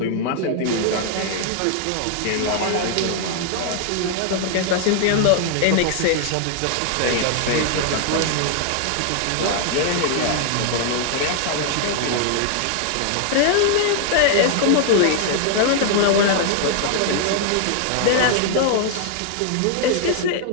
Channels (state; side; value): different; both; correlation 0.00